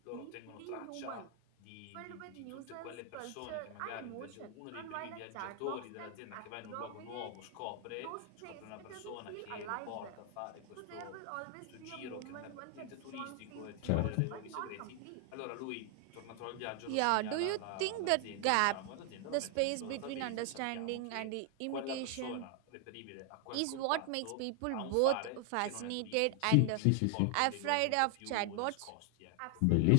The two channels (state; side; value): different; both; correlation 0.00